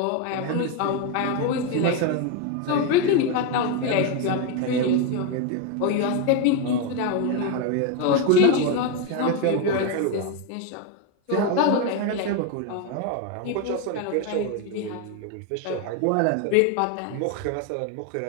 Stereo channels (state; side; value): different; both; correlation 0.02